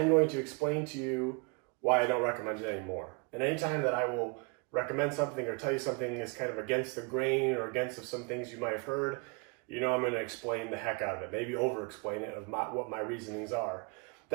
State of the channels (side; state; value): left; quieter; 33.1 dB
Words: going to explain to you why I don't recommend it anymore. And anytime that I will recommend something or tell you something is kind of against the grain or against of some things you might have heard, you know I'm going to explain the heck out of it, maybe over-explain it of what my reasonings are.